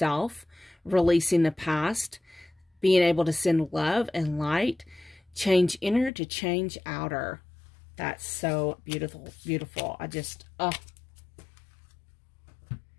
releasing the past, being able to send love and light, change inner to change outer. That's so beautiful, beautiful. I just,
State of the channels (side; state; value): right; drops out; at 6.1 s